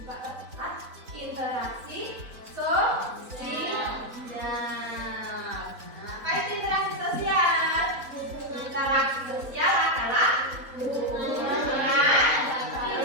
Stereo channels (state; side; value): late; left; 4.0 ms